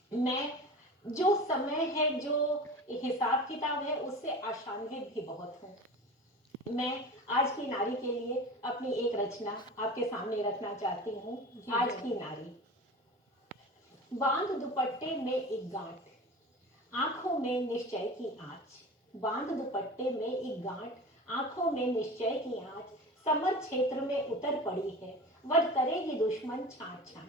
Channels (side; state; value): both; normal; correlation 0.34